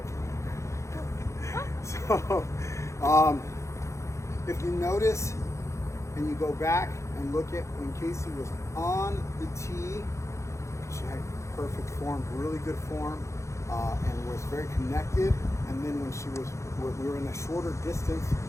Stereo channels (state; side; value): late; right; 0.14 ms